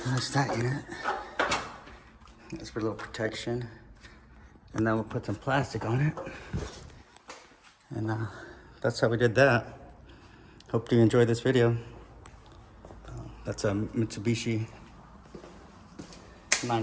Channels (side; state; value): both; identical; correlation 1.00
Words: That's that unit. That's for a little protection. And then we'll put some plastic on it. And that's how we did that. Hope you enjoyed this video. That's a Mitsubishi